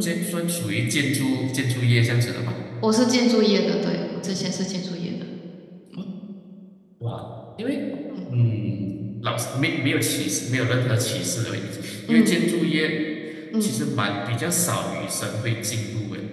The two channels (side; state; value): both; identical; correlation 1.00